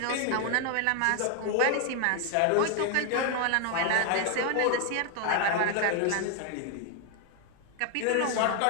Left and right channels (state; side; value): different; both; correlation 0.00